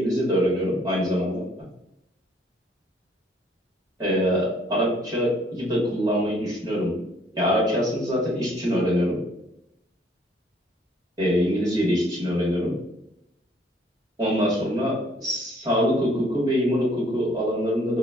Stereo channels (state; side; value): normal; both; correlation 0.61